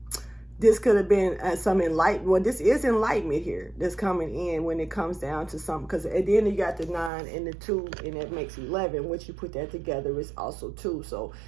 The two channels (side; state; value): left; drops out; at 7.1 s